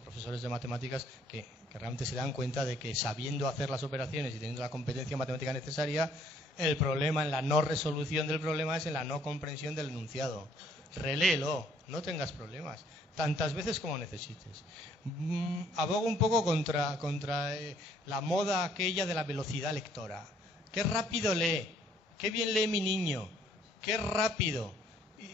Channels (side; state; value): both; normal; correlation 0.64